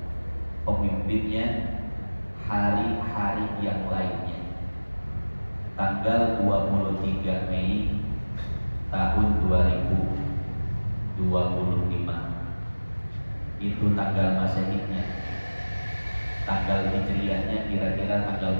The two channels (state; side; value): inverted; both; correlation -1.00